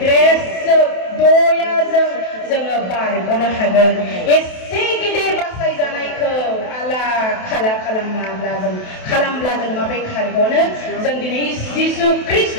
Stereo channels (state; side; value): late; right; 28 ms